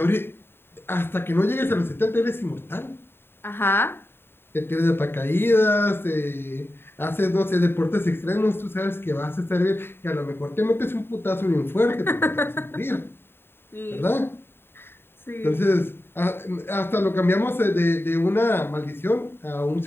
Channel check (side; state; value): right; late; 0.11 ms